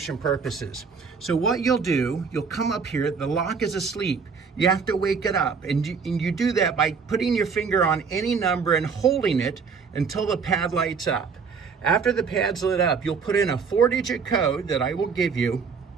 purposes. So what you'll do, you'll come up here, the lock is asleep. You have to wake it up, and you do that by putting your finger on any number and holding it until the pad lights up. After the pad's lit up, you'll put in a 4-digit code that I will give you,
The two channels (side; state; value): left; quieter; 5.6 dB